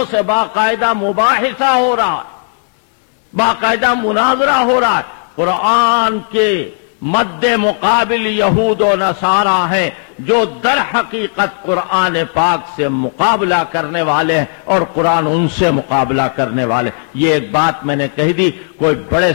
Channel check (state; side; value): silent; right; 64 dB below the other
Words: سے باقاعدہ مباحثہ ہو رہا ہے، باقاعدہ مناظرہ ہو رہا ہے۔ قرآن کے مد مقابل یہود و نصارہ ہیں جو در حقیقت قرآن پاک سے مقابلہ کرنے والے ہیں، اور قرآن ان سے مقابلہ کرنے والے۔ یہ ایک بات میں نے کہہ دی، کوئی بڑے